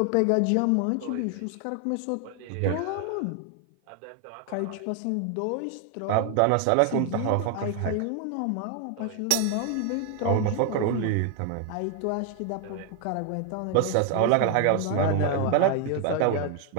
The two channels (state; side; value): different; both; correlation 0.01